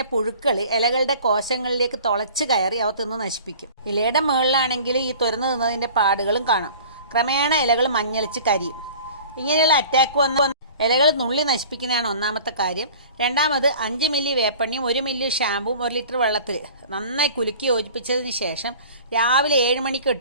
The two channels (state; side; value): inverted; both; correlation -0.44